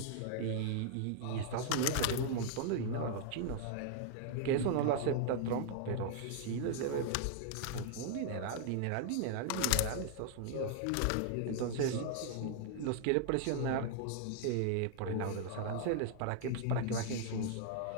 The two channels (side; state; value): both; different; correlation -0.01